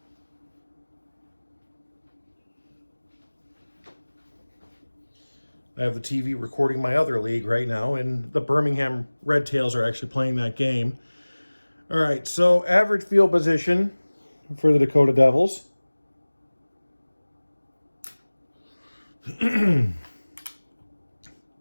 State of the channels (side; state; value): both; inverted; correlation -1.00